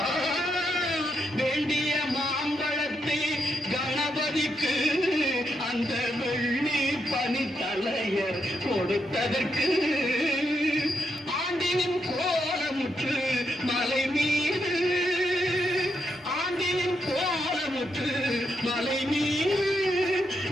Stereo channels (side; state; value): both; normal; correlation 0.81